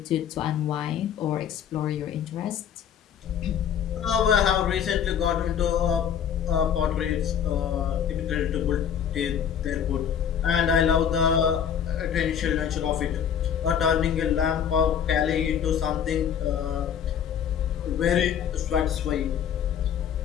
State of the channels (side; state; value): right; quieter; 8.5 dB